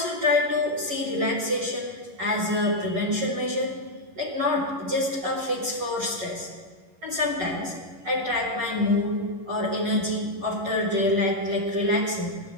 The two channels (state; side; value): late; left; 11 ms